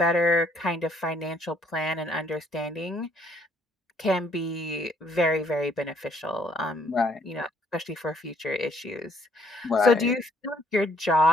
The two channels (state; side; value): normal; both; correlation 0.64